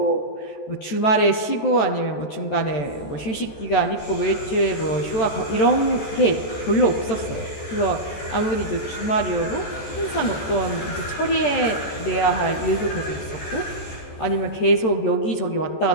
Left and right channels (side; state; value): right; late; 14 ms